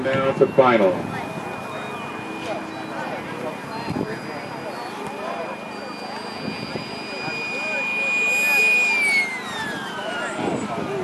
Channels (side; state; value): both; identical; correlation 1.00